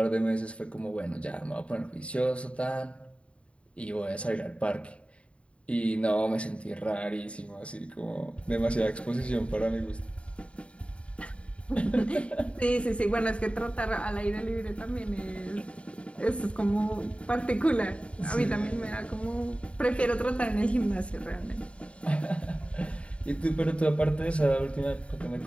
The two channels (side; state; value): right; late; 0.061 ms